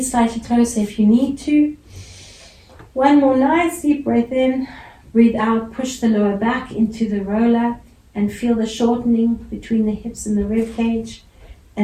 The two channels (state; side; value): identical; both; correlation 1.00